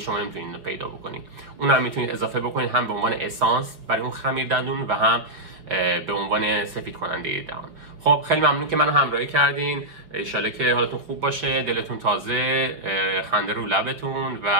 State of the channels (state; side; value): late; left; 5.2 ms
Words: نمیتونید اینو پیدا بکنید. اونم میتونید اضافه بکنید هم به عنوان اسانس برای اون خمیر دندون و هم به عنوان سفید کننده دهان. خب خیلی ممنون که منو همراهی کردین. انشالله که حالتون خوب باشه، دلتون تازه، خنده رو لبتون